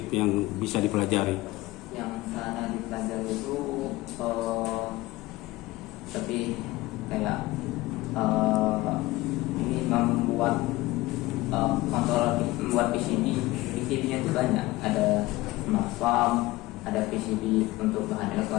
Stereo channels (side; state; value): right; quieter; 19.3 dB